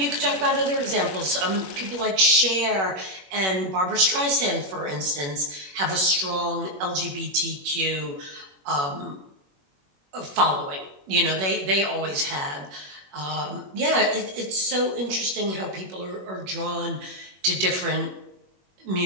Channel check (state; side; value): late; left; 21 ms